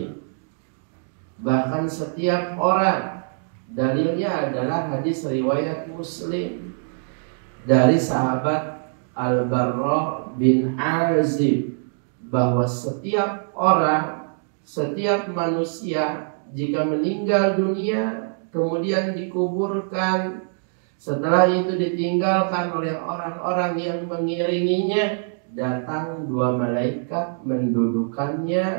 bahkan setiap orang, dalilnya adalah hadis riwayat Muslim dari sahabat Al-Barra bin Azib, bahwa setiap orang, setiap manusia jika meninggal dunia kemudian dikuburkan, setelah itu ditinggalkan oleh orang-orang yang mengiringinya, datang 2 malaikat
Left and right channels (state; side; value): silent; left; digital silence